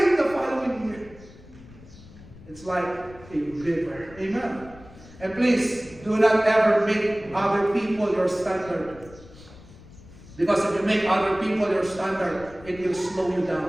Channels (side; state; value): left; noise; rumble, 20 dB below the sound